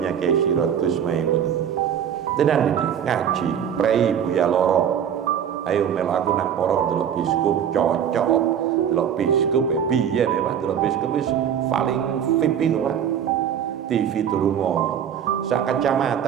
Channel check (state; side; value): quieter; left; 8.8 dB